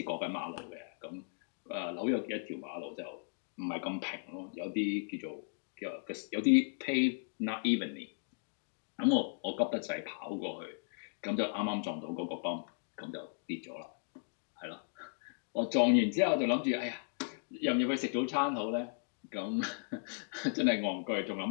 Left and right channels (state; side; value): silent; right; digital silence